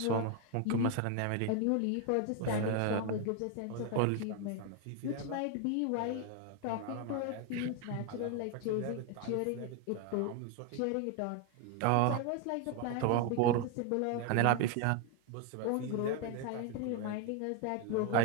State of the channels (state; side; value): different; both; correlation 0.01